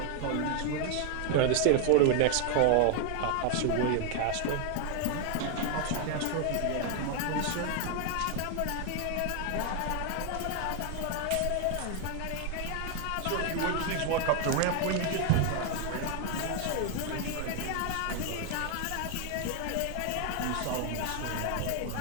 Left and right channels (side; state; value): both; different; correlation 0.01